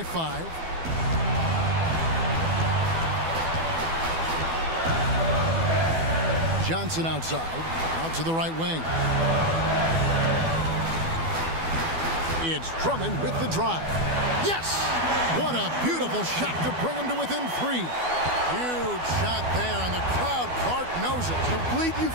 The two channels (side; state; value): left; late; 12 ms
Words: 5. Johnson outside, out to the right wing. It's Drummond with the drive. Yes! What a beautiful shot to bring him to within 3. Huge shot there, and the crowd, Clark, knows it. Complete